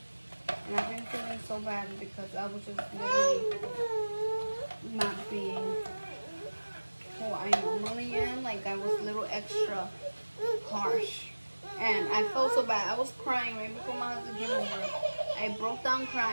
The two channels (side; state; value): both; inverted; correlation -1.00